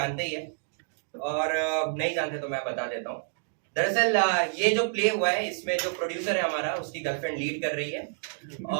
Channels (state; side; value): silent; left; digital silence